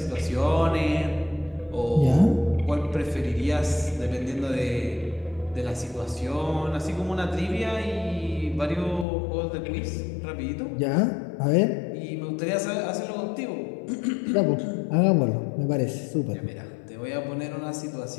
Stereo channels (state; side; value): drops out; right; at 9.1 s